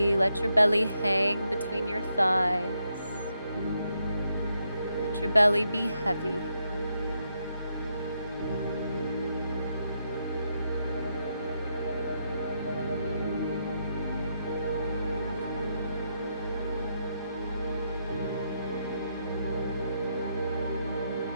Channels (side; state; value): both; inverted; correlation -0.80